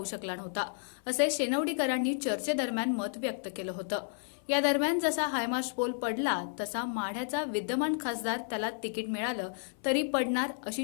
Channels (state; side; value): silent; right; 56 dB below the other